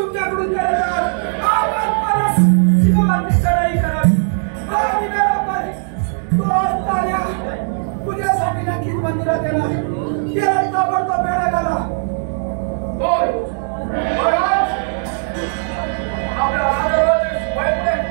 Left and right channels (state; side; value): silent; left; digital silence